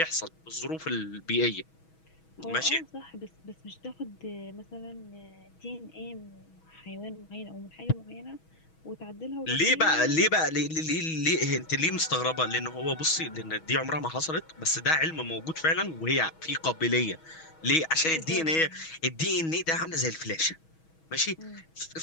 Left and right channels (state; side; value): late; right; 6.2 ms